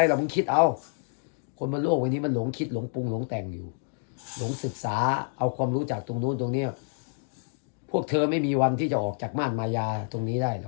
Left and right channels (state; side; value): silent; right; digital silence